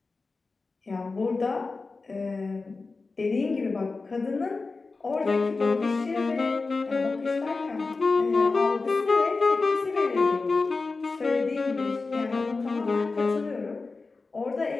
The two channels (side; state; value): right; quieter; 3.9 dB